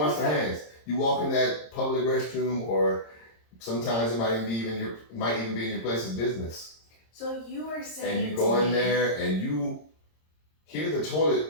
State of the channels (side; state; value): right; late; 26 ms